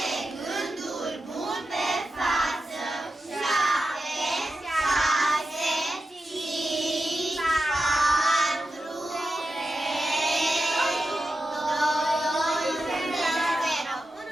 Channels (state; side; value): normal; both; correlation 0.90